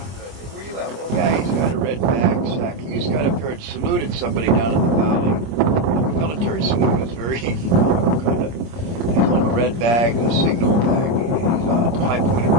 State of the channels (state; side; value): late; left; 26 ms